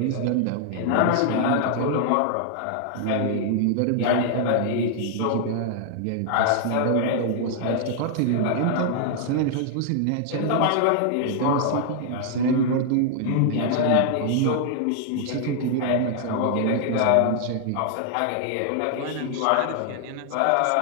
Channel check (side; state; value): both; different; correlation -0.01